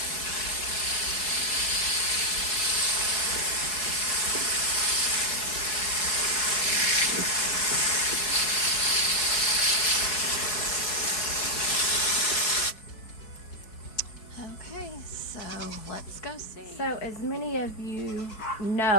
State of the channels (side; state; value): right; late; 4.7 ms